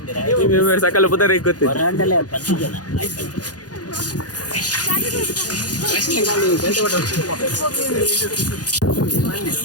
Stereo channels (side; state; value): right; late; 0.69 ms